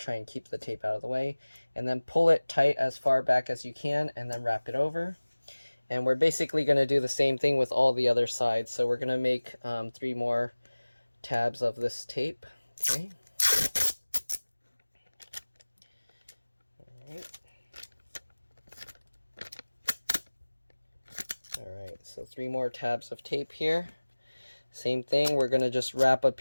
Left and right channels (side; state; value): both; inverted; correlation -1.00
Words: and keep the tape out of the way. And then pull it tight as far back as you can, and then wrap it over. And we're basically going to do the same thing with all the other sides. So we're going to make 3 more tabs of this tape. Okay. Alright, so 3 more tabs of tape here. Same thing, we're going to just wrap a